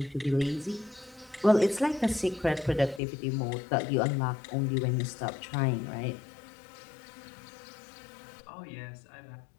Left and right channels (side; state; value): right; drops out; at 3.0 s